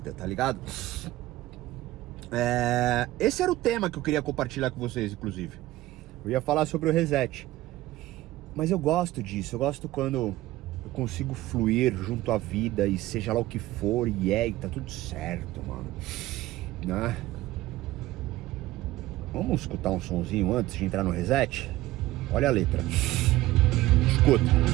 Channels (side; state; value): left; quieter; 16.7 dB